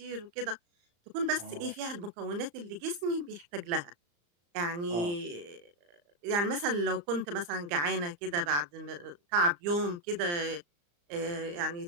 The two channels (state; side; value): late; left; 34 ms